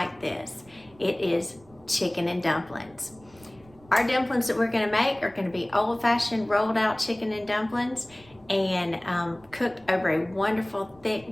this. It is chicken and dumplings. Our dumplings that we're going to make are going to be old-fashioned rolled out chicken and dumplings, and cooked over a wonderful thick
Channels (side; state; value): right; noise; rumble, 27 dB below the sound